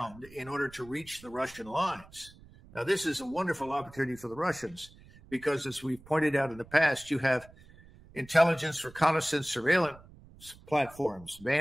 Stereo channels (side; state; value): right; noise; rumble, 22 dB below the sound